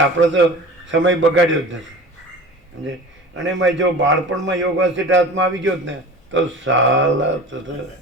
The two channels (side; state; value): both; normal; correlation 0.37